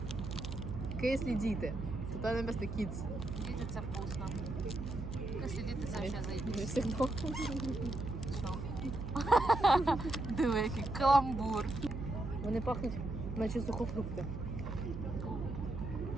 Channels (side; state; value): right; noise; hum, 6 dB below the sound